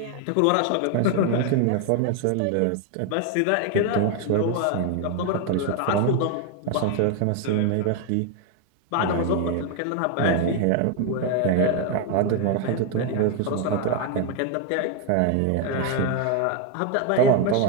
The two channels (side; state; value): both; different; correlation 0.01